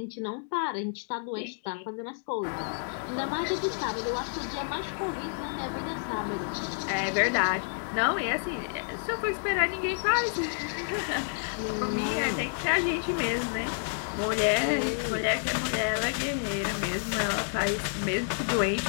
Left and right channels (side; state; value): right; silent; digital silence